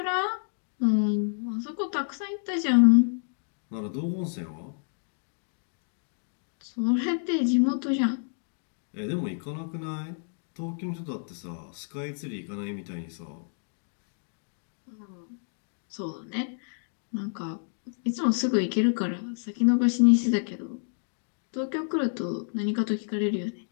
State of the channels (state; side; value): silent; right; digital silence